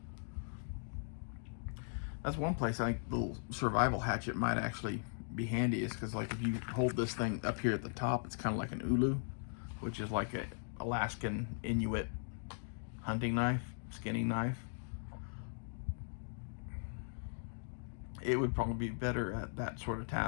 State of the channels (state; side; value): silent; right; digital silence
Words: That's one place I think the little survival hatchet might actually be handy, is because, like, if you hold this thing up here at the top, it's kind of like an ulu, which is like a Alaskan Inuit hunting knife, skinning knife. It would probably be better at that sort of